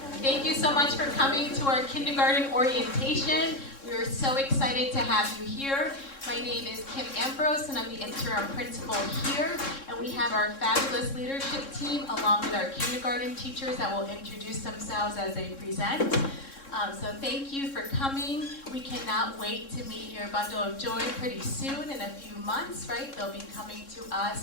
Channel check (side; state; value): right; late; 3.6 ms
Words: Thank you so much for coming to our kindergarten orientation. We are so excited to have you here. My name is Kim Ambrose, and I'm the interim principal here. And we have our fabulous leadership team, along with our kindergarten teachers that will introduce themselves as they present. So thank you for coming. We cannot wait to meet your bundle of joy pretty soon, in a few months, right? They'll be coming to